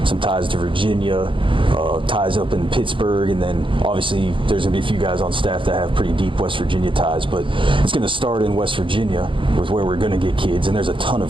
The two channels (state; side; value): late; left; 0.25 ms